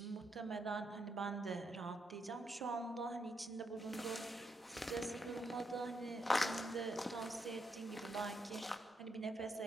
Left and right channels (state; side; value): normal; both; correlation 0.80